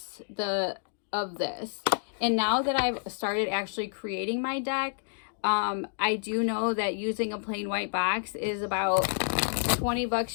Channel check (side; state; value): right; silent; digital silence